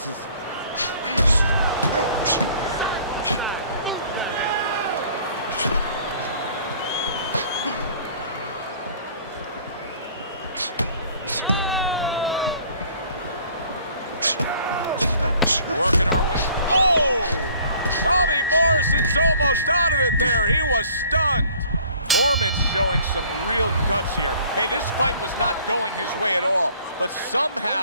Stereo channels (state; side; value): inverted; both; correlation -0.54